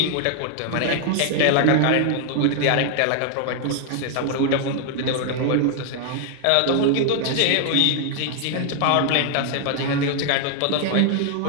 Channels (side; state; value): both; different; correlation 0.00